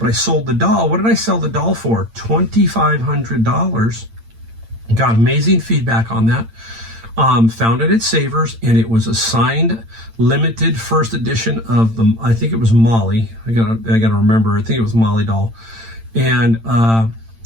I sold the doll. What did I sell the doll for? $2,500. Got amazing feedback on that. Found it at Savers, and it was a signed, limited first edition of I think it was Molly. I gotta remember. I think it was Molly doll. And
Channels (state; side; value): late; left; 8.9 ms